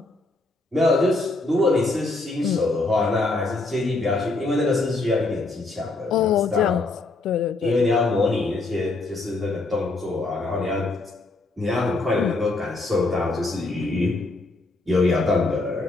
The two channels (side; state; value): right; quieter; 3.1 dB